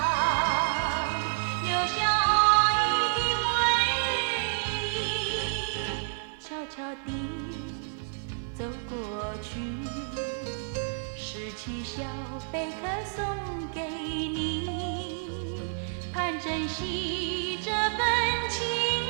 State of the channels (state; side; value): silent; left; 58 dB below the other